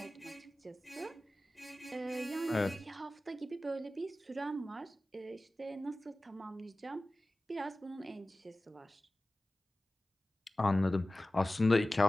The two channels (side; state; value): both; normal; correlation 0.96